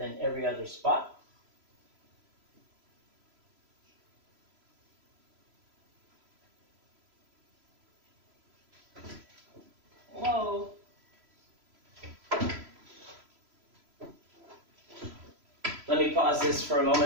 every other spot. Whoa. Let me pause this for a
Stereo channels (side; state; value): left; late; 3.0 ms